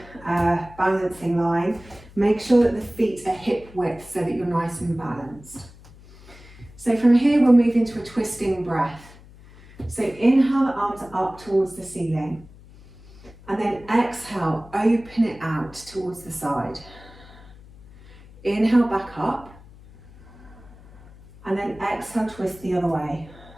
balancing line. Make sure that the feet are hip width so that you're nice and balanced. So from here, we'll move into a twisting breath. So inhale the arms up towards the ceiling and then exhale, open it out towards the side. Inhale back up and then exhale, twist the other way.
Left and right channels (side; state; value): left; noise; hum, 22 dB below the sound